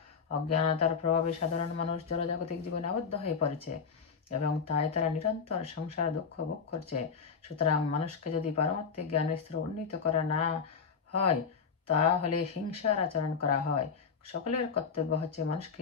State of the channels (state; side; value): quieter; right; 5.9 dB